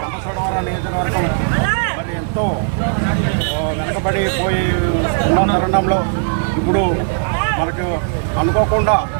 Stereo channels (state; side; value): silent; left; digital silence